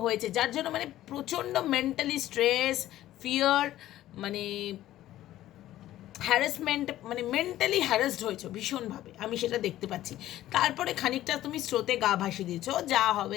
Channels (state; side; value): quieter; right; 14.0 dB